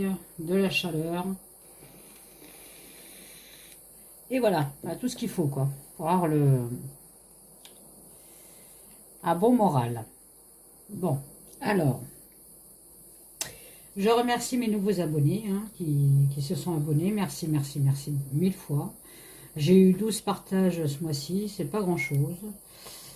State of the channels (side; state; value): both; identical; correlation 1.00